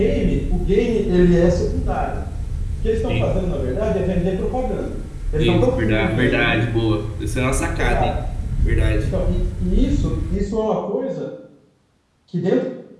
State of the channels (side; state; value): both; identical; correlation 1.00